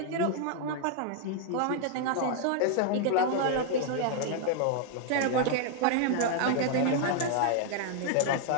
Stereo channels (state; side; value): different; both; correlation 0.00